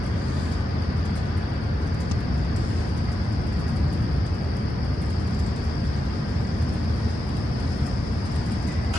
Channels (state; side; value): normal; both; correlation 0.88